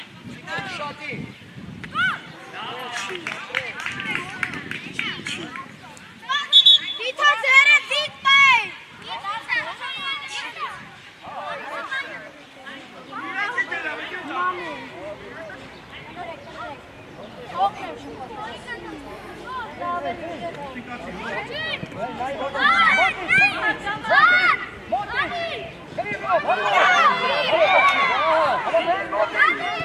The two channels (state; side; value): identical; both; correlation 1.00